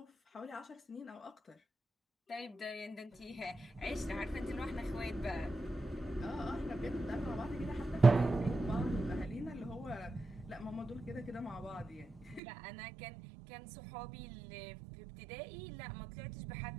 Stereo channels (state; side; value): drops out; left; at 12.4 s